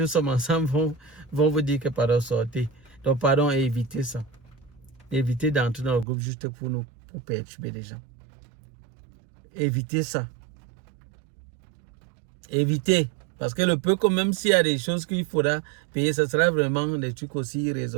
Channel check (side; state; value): left; drops out; at 6.1 s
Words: sommes ensemble vont vous dire que pardon, sortez. Donc pardon, évitez ça. Évitez d'entrer dans le groupe juste pour perturber les gens. Évitez ça. Évitez. Parce que le peu, quand même s'il y a des choses qu'il faudra payer, ce sera vraiment des trucs aussi